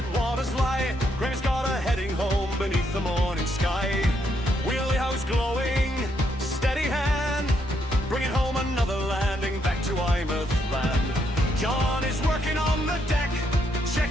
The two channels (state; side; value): normal; both; correlation 0.76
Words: waters lie, Graeme's got her heading home beneath the morning sky. Wheelhouse glowing, steady hand, bringing home another landing back to Eyemouth land. John is working on the deck,